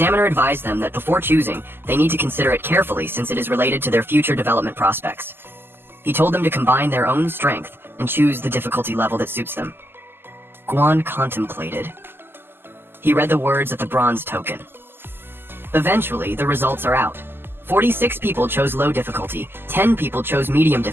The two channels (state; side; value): late; left; 0.10 ms